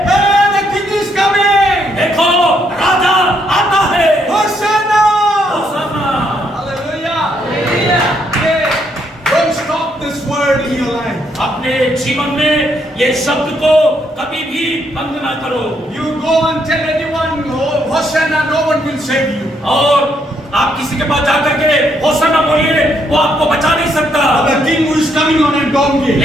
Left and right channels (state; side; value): normal; both; correlation 0.74